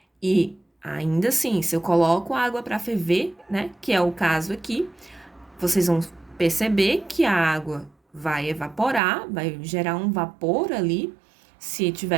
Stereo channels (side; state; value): left; drops out; at 9.0 s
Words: E ainda assim, se eu coloco água para ferver, né, que é o caso aqui, vocês vão perceber que a água vai evaporar, vai gerar um vapor ali, se